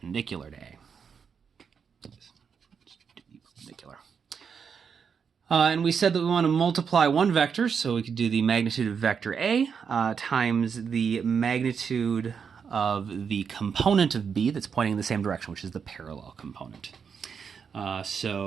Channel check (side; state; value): left; quieter; 6.5 dB